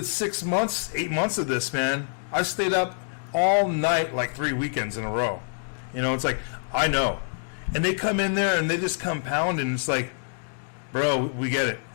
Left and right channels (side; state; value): right; silent; digital silence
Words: 6 months, 8 months of this, man. I stayed up all night like 3 weekends in a row. It's like, I know. And they come in there and they just compound and it's like, bro, we get it.